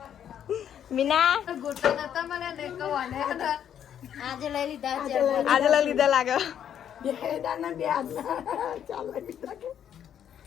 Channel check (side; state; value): right; quieter; 9.4 dB